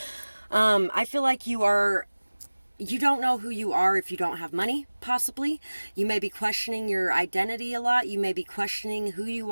I feel like you don't know who you are if you don't have money, possibly. You may be questioning your identity a lot. You may be questioning who you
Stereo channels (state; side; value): inverted; both; correlation -1.00